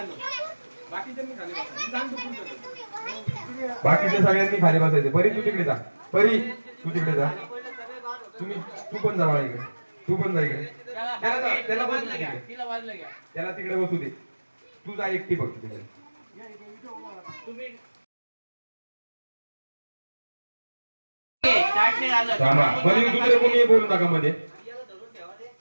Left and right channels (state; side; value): inverted; both; correlation -1.00